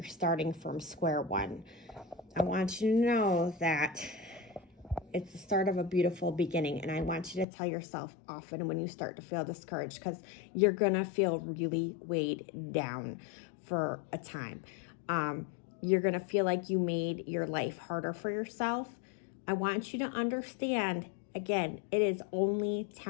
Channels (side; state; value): right; drops out; at 7.5 s